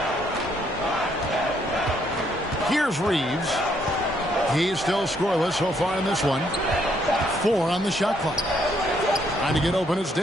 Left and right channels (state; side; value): normal; both; correlation 0.71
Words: Here's Reeves. He's still scoreless so far in this one. 4 on the shot clock. Trying to get open, it's